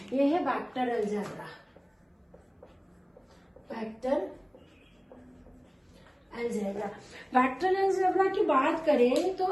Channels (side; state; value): both; identical; correlation 1.00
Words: ये है vector algebra. Vector algebra, vector algebra की बात करें तो